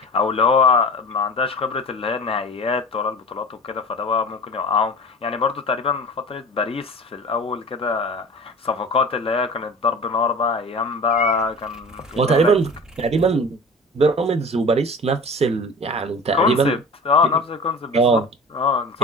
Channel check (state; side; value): normal; both; correlation 0.37